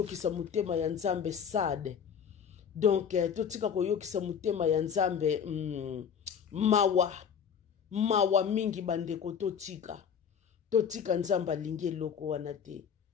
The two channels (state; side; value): quieter; right; 7.5 dB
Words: mutema ya nzambe sade donc totika koyokisa mutema ya nzambe mawa mingi bandeko totika nzambe alingi eloko wana te